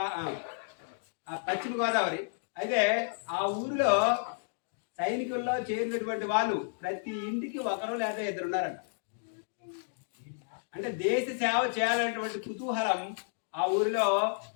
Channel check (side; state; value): right; silent; digital silence